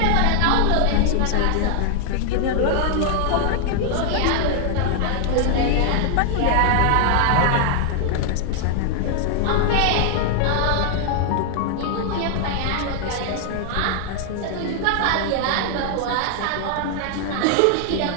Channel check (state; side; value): different; both; correlation 0.00